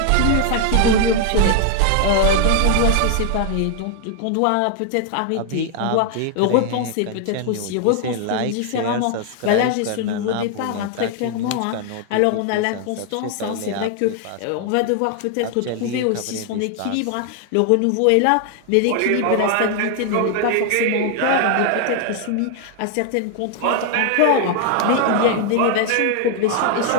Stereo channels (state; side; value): different; both; correlation 0.00